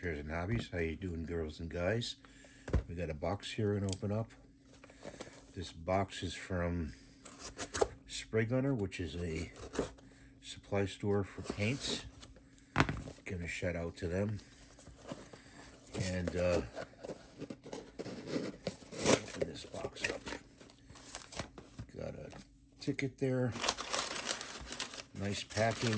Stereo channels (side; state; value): both; identical; correlation 1.00